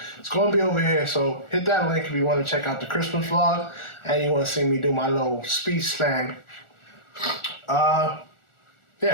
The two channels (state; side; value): late; right; 1.4 ms